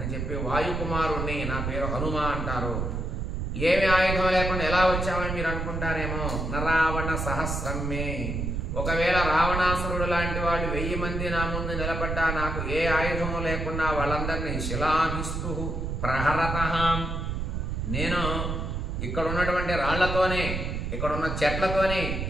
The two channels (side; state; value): right; noise; rumble, 2 dB below the sound